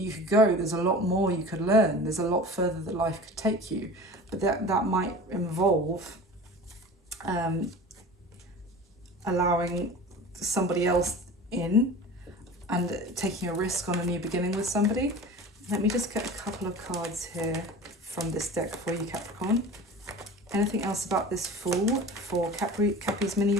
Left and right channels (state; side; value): normal; both; correlation 0.37